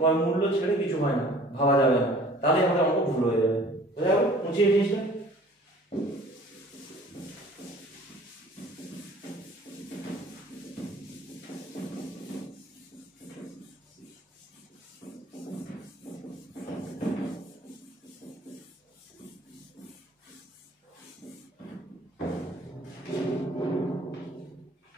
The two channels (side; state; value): both; normal; correlation 0.50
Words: মূল্য ছেড়ে কিছু হয় না ভাবা যাবে না তাহলে আমাদের অঙ্ক ভুল হয়ে যাবে বোঝা গেল বুঝিয়ে জিনিসটা।